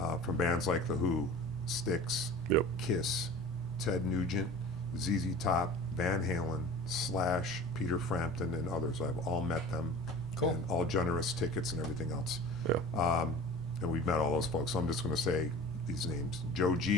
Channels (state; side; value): normal; both; correlation 0.39